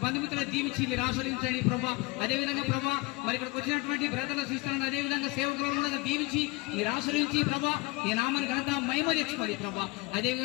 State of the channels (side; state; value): right; quieter; 24.0 dB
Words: బంధుమిత్రులను దీవించి మీరు ఆశ్రయించండి ప్రభా. అదేవిధంగా ప్రభా మరి ఇక్కడికి వచ్చినటువంటి బ్రదర్ల సిస్టర్లను అదేవిధంగా సేవకులను కూడా దీవించి మీరు ఆశ్రయించి ప్రభా నీ నామాన్ని ఘనత మహిమ తెచ్చుకోండి ప్రభా.